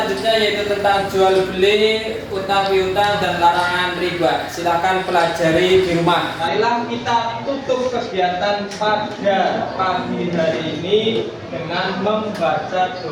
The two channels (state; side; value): identical; both; correlation 1.00